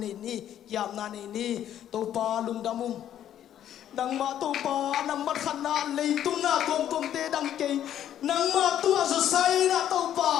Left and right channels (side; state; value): right; quieter; 10.8 dB